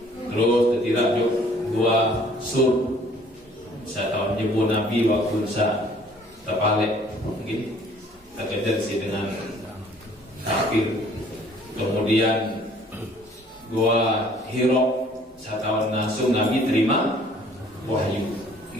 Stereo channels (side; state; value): both; normal; correlation 0.57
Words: Terus ketirajuk dua sur. Saya tahu nyebut Nabi waktu saya terpalik, gitu. Terkejar sih dengan kafir. Kemudian dua Hiro. Saya tahu langsung Nabi terima wahyu.